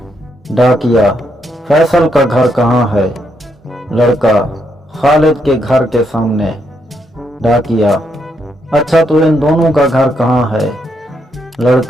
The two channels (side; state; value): both; normal; correlation 0.78